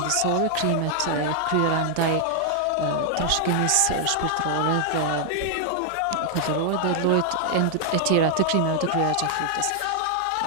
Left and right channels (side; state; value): both; different; correlation 0.00